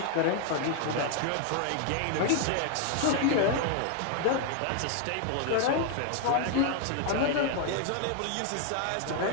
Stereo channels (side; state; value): both; different; correlation 0.01